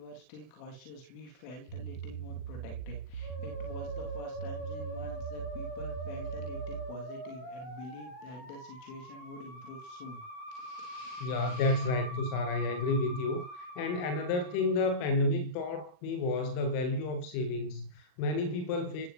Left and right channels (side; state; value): right; late; 39 ms